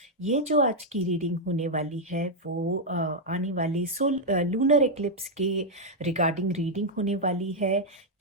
ये जो आज की रीडिंग होने वाली है वो आने वाले लूनर एक्लिप्स के रिगार्डिंग रीडिंग होने वाली है।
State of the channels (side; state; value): both; normal; correlation -0.02